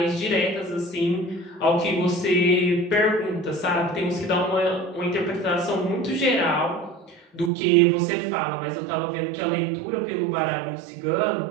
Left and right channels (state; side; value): drops out; left; at 7.5 s